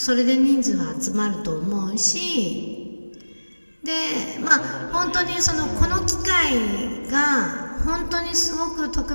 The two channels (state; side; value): inverted; both; correlation -1.00